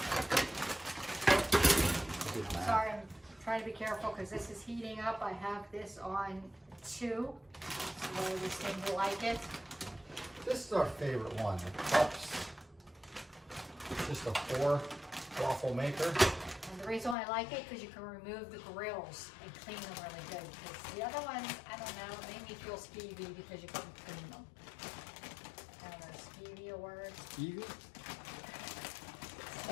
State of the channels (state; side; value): drops out; right; at 17.2 s